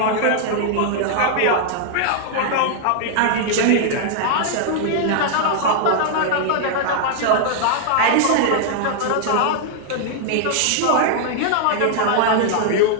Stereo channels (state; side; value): different; both; correlation -0.01